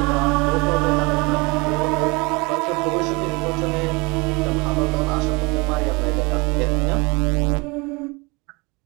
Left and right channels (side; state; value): left; quieter; 26.9 dB